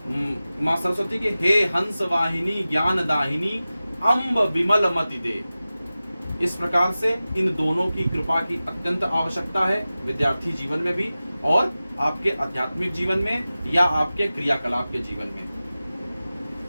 मां सरस्वती के हे हंस वाहिनी ज्ञान दाहिनी अम्ब विमल मति दे। इस प्रकार से इन दोनों की कृपा की अत्यंत आवश्यकता है विद्यार्थी जीवन में भी और आपके आध्यात्मिक जीवन में या आपके क्रियाकलाप के जीवन में।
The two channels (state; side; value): inverted; both; correlation -0.96